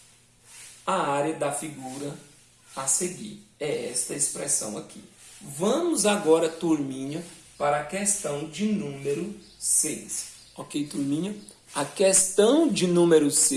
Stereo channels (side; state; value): both; identical; correlation 1.00